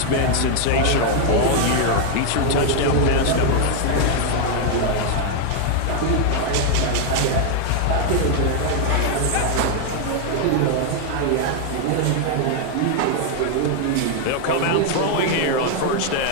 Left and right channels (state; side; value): different; both; correlation 0.00